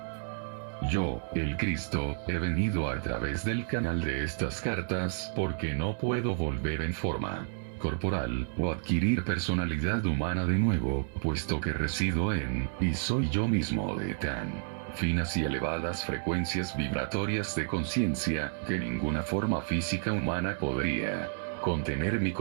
Yo, el Cristo, he venido a través del canal de estas cartas porque no puedo volver en forma corporal o adquirir personalidad humana de nuevo, puesto que resido en, y soy yo mismo de tan finas y elevadas frecuencias vibratorias de conciencia, que ninguna forma física humana podría contener mi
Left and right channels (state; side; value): silent; left; 57 dB below the other